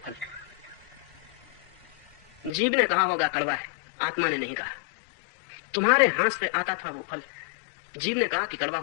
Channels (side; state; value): right; drops out; at 2.5 s